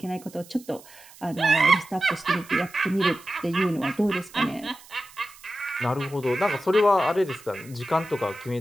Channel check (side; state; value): right; noise; hiss, 22 dB below the sound